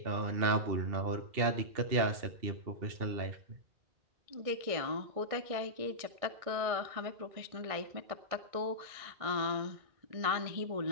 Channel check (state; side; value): late; left; 1.6 ms